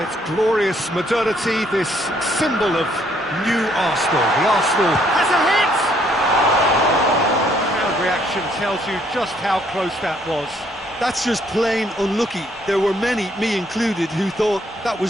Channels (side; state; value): both; normal; correlation 0.67